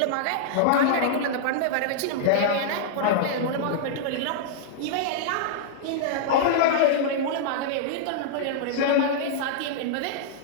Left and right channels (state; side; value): different; both; correlation -0.02